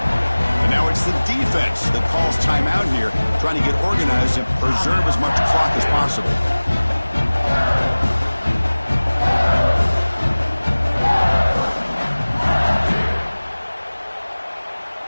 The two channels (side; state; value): both; inverted; correlation -1.00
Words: And now it's the defense that calls timeout here, trying to get organized and preserve as much clock as possible.